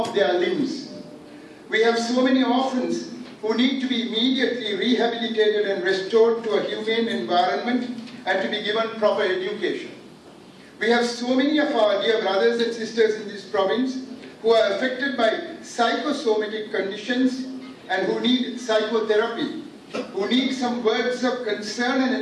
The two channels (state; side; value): identical; both; correlation 1.00